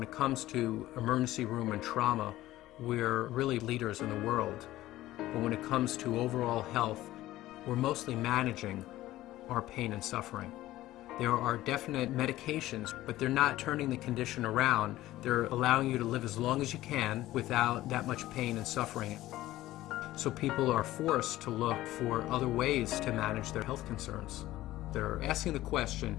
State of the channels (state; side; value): quieter; right; 15.8 dB